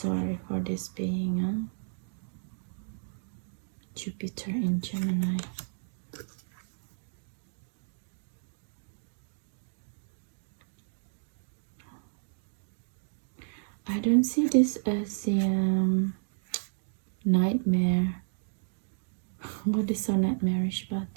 for this being, huh? Jupiter in Gemini. I don't see this as a nightmare. What is so nightmarish about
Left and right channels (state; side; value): silent; left; digital silence